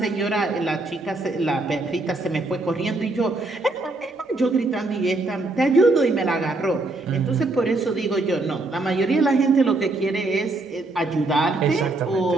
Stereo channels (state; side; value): quieter; left; 3.0 dB